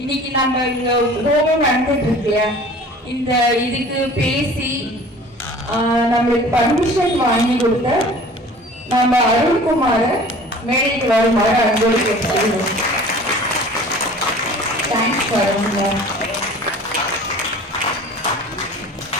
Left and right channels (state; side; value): normal; both; correlation 0.45